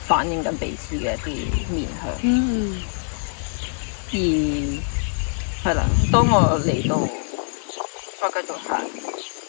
反映緊彼此嘅一啲面向。而係啦，當我嚟到再繼續行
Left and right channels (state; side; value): silent; right; 63 dB below the other